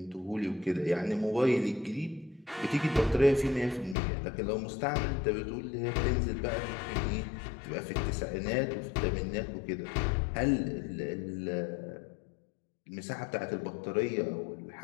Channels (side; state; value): right; drops out; at 4.0 s